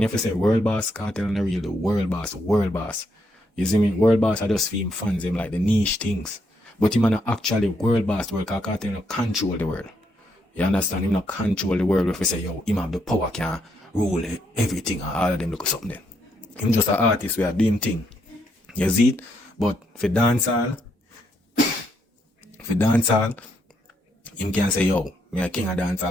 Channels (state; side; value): normal; both; correlation 0.76